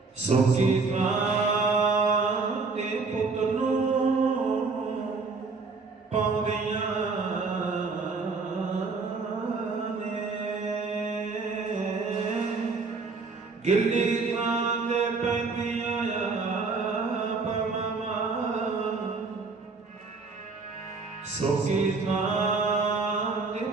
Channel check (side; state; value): left; quieter; 4.3 dB